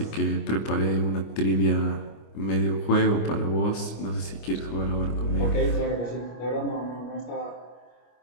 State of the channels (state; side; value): late; right; 25 ms